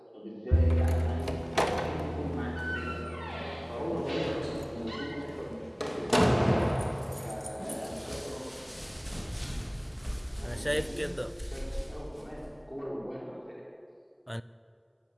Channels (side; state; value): both; identical; correlation 1.00